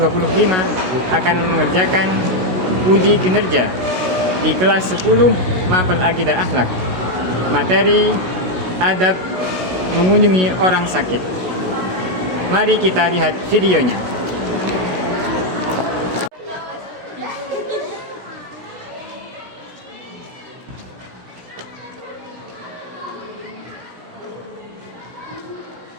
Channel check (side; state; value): left; late; 16 ms